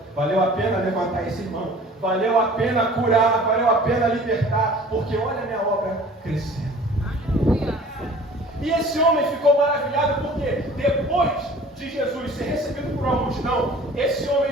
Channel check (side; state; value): both; normal; correlation 0.47